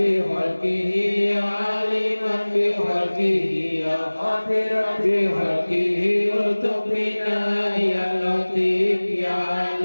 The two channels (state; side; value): inverted; both; correlation -1.00